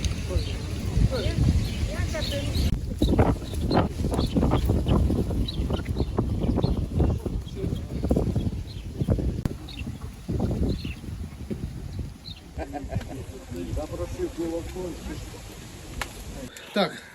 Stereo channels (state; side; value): identical; both; correlation 1.00